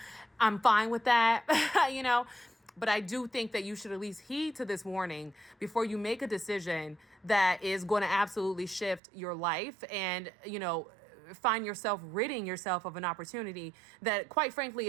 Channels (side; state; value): left; drops out; at 9.0 s